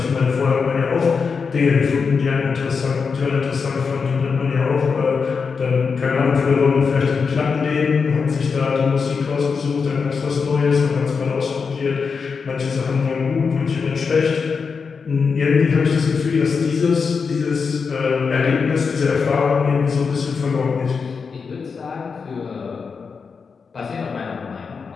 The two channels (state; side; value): quieter; right; 5.4 dB